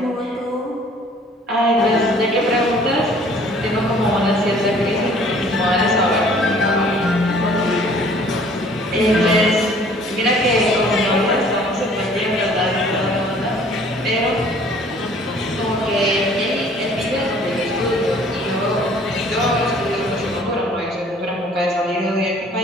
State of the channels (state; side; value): normal; both; correlation 0.54